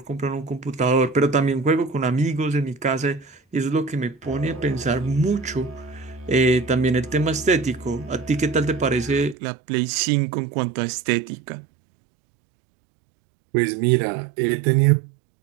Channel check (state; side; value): drops out; left; at 9.3 s